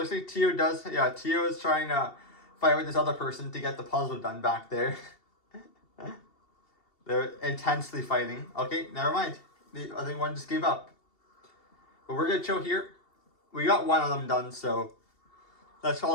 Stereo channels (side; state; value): right; late; 2.7 ms